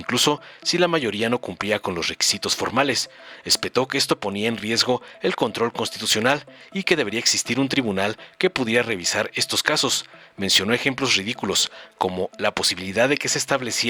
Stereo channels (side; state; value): both; identical; correlation 1.00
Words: si la mayoría no cumplía con los requisitos formales. Espetó que esto ponía en riesgo el control constitucional y que debería existir un tribunal que pudiera revisar estos casos. Mencionó ejemplos ridículos, como la posibilidad de que se